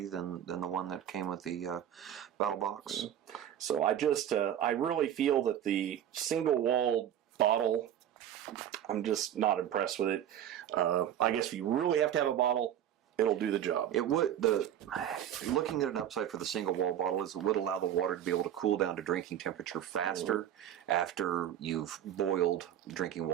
than the one that came with the Battlbox. So I really feel that the single walled bottle, I'm just not impressed with it. I guess if you really have to have a bottle, it'll do the job. It would. Looking at an upside for the single wall bottle is it would allow the water to be able to cool down to drinking temperature faster after you've boiled drinking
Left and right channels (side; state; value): left; quieter; 10.6 dB